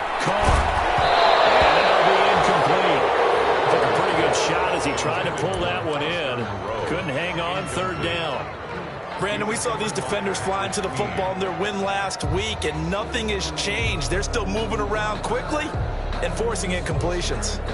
Carr. And that'll be incomplete. Took a pretty good shot as he tried to pull that one in. Couldn't hang on 3rd down. Brandon, we saw these defenders flying to the football in their win last week, and nothing has changed. They're still moving around quickly and forcing incompletions.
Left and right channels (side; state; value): both; identical; correlation 1.00